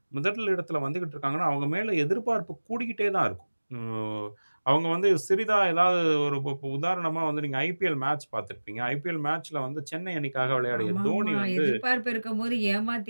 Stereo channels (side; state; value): both; inverted; correlation -1.00